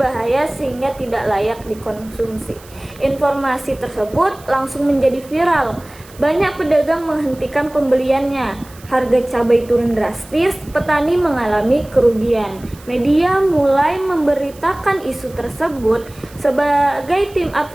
sehingga tidak layak dikonsumsi. Informasi tersebut langsung menjadi viral. Banyak pedagang menghentikan pembeliannya. Harga cabai turun drastis, petani mengalami kerugian. Media mulai memberitakan isu tersebut. Sebagai tim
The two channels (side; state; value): right; noise; hiss, 23 dB below the sound